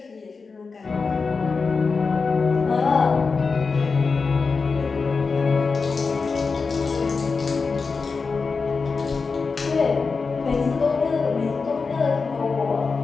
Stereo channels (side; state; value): right; quieter; 4.7 dB